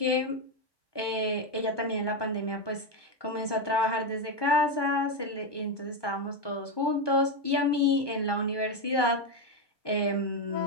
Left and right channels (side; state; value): right; late; 1.2 ms